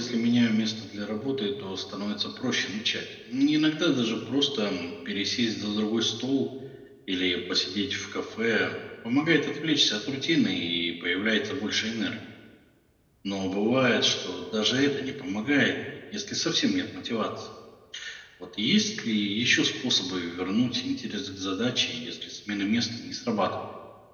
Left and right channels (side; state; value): both; identical; correlation 1.00